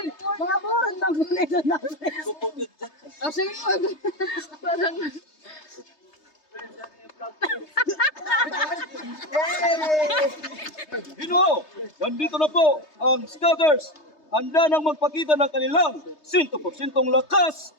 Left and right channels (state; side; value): late; right; 3.3 ms